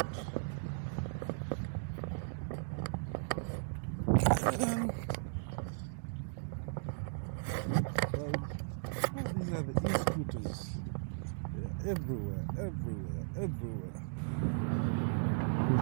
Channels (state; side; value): silent; left; digital silence